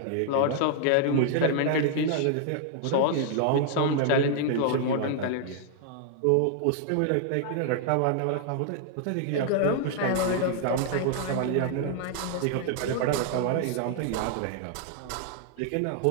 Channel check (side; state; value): both; different; correlation 0.00